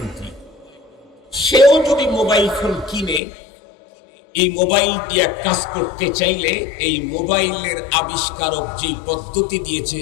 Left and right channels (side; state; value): right; drops out; at 3.2 s